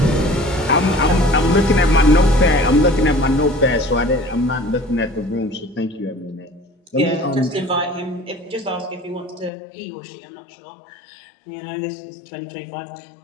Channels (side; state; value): right; drops out; at 9.5 s